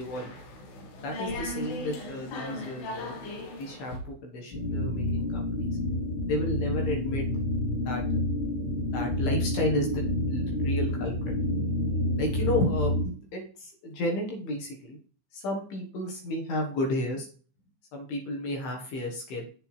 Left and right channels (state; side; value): late; right; 15 ms